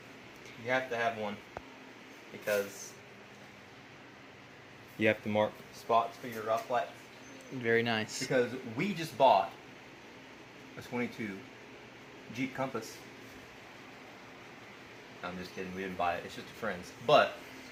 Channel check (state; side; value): identical; both; correlation 1.00